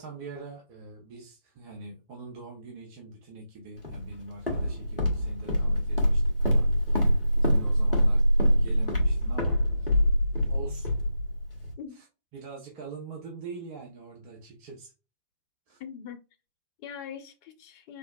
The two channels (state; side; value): inverted; both; correlation -0.88